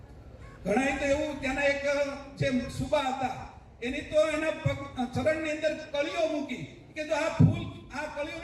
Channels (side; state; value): both; identical; correlation 1.00